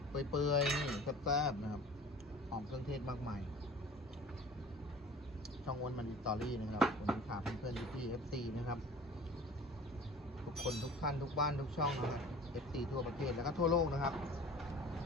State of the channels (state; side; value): normal; both; correlation 0.43